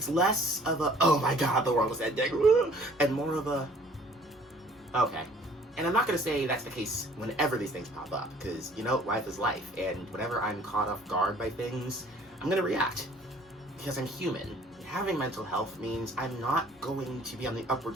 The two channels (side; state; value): both; normal; correlation 0.55